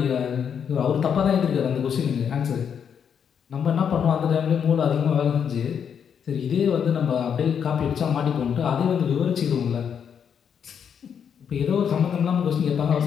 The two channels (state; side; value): quieter; right; 7.7 dB